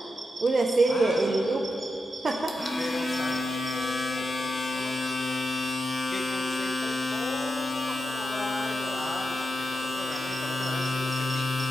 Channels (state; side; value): normal; both; correlation 0.87